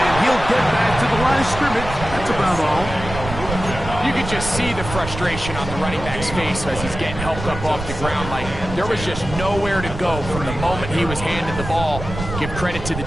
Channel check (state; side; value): noise; right; rumble, 8 dB below the sound